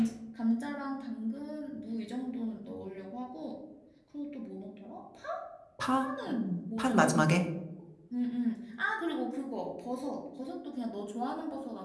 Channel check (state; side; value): identical; both; correlation 1.00